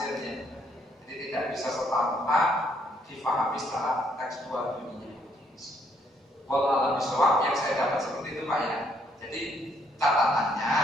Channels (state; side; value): normal; both; correlation 0.69